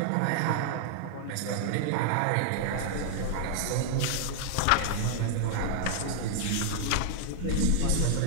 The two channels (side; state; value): both; different; correlation 0.00